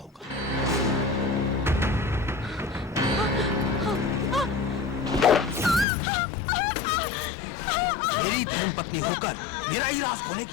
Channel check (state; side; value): drops out; right; at 5.9 s